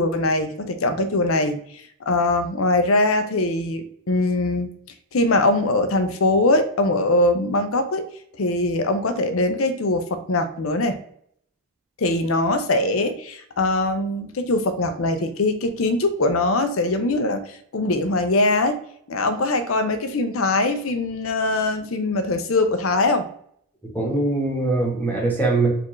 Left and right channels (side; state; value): both; normal; correlation -0.08